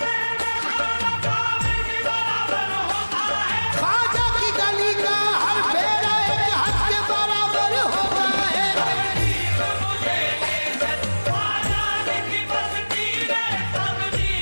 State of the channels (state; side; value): inverted; both; correlation -1.00